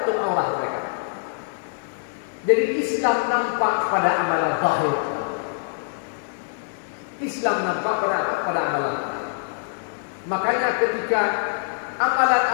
aurat mereka. Jadi Islam nampak pada amalan zahir. Islam nampak pada amalan zahir. Makanya ketika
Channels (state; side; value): silent; right; digital silence